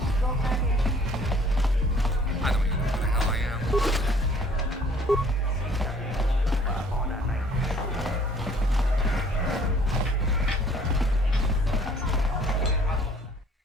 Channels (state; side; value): normal; both; correlation 0.56